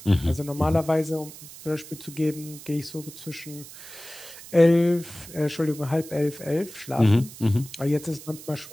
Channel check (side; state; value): right; noise; hiss, 16 dB below the sound